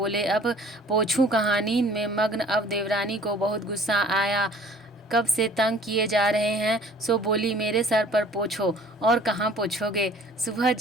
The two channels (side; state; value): both; normal; correlation 0.52